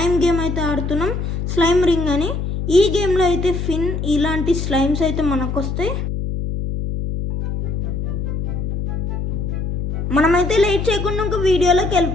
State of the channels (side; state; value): left; noise; hum, 2 dB below the sound